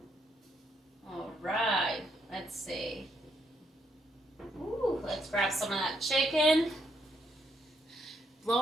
All right, let's see. Ooh, let's grab some of that chicken.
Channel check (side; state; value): both; normal; correlation 0.75